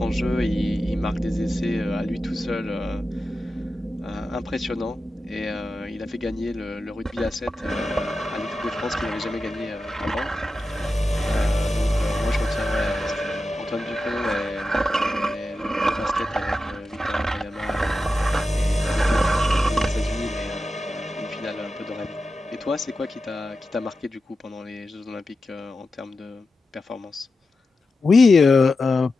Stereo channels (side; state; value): both; normal; correlation 0.91